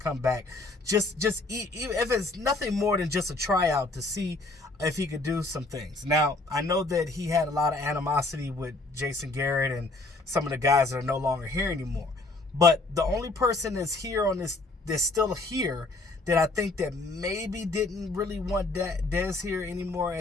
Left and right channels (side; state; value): right; quieter; 3.1 dB